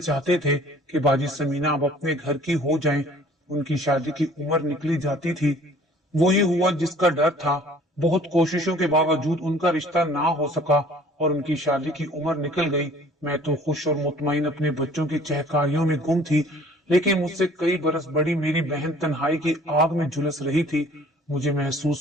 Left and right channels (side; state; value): both; normal; correlation 0.52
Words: تھے کہ باجی سمینہ اب اپنے گھر کی ہو جائیں۔ ان کی شادی کی عمر نکلی جاتی تھی۔ وہی ہوا جس کا ڈر تھا۔ بہت کوششوں کے باوجود ان کا رشتہ نہ ہو سکا اور ان کی شادی کی عمر نکل گئی۔ میں تو خوش اور مطمئن اپنے بچوں کی چہکاریوں میں گم تھی، لیکن مجھ سے کئی برس بڑی میری بہن تنہائی کی آگ میں جھلس رہی تھی۔ مجھے